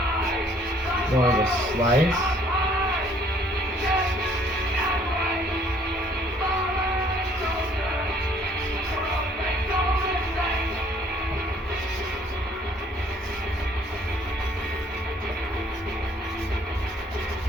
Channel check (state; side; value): normal; both; correlation 0.60